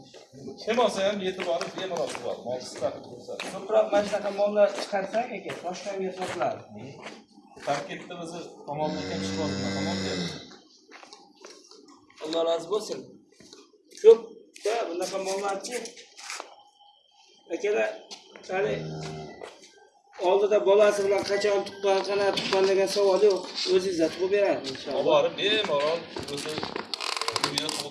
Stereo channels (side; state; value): both; identical; correlation 1.00